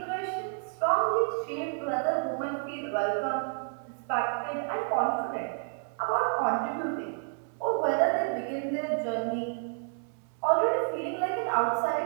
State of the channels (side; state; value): left; silent; 58 dB below the other